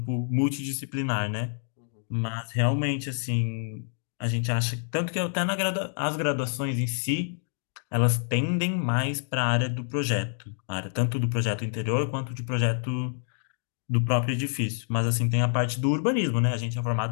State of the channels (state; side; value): silent; right; digital silence